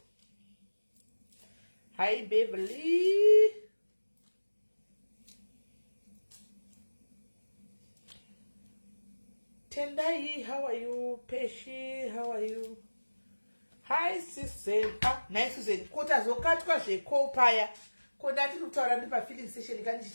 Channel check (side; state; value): both; inverted; correlation -1.00